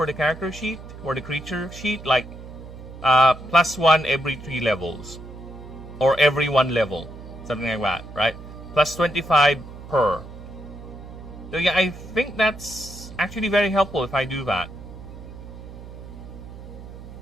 the character sheet or the creature sheet, like +1 every 3 levels or every 1 level, something like that, right? Plus 25 per. So yeah, I think that's actually very helpful if I do that.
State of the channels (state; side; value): noise; right; hum, 14 dB below the sound